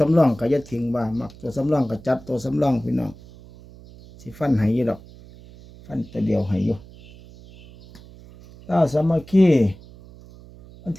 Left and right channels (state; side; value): noise; right; hum, 21 dB below the sound